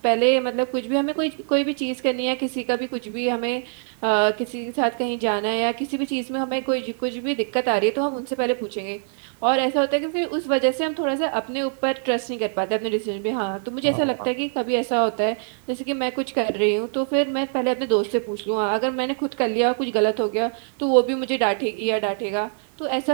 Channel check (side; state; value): left; silent; digital silence